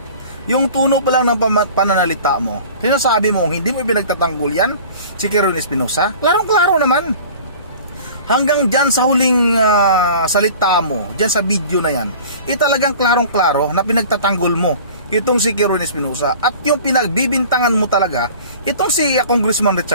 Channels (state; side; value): inverted; both; correlation -0.43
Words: Yung tuno pa lang ng pananalita mo, sinasabi mo hindi mo pinagtatanggol yan si Kirwin Espinosa. Klarong-klaro naman. Hanggang dyan sa huling salita mo, dyan sa video na yan, talagang klarong-klaro na pinagtatanggol mo itong si Kirwin Espinosa. At yung pinagbibintangan mo talaga itong si Congressman